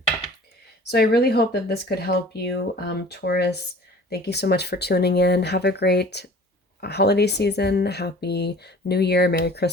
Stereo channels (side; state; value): both; normal; correlation 0.46